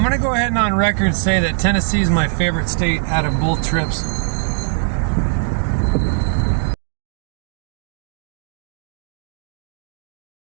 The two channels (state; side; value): silent; left; digital silence